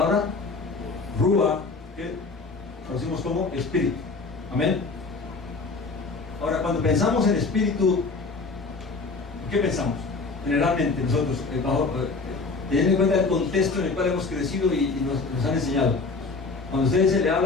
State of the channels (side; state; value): right; quieter; 4.0 dB